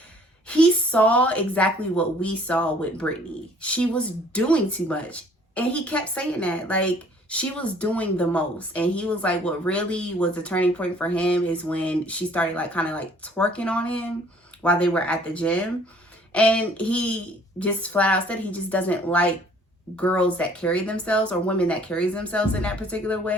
saw exactly what we saw with Brittany. She was doing too much. And he kept saying that. Like, she was doing the most. And he was like, what really was the turning point for him is when she started, like, kind of like twerking on him while they were at the gym. And he just flat out said he just doesn't like girls that carry themselves, or women that carries themselves in that particular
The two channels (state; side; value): normal; both; correlation 0.57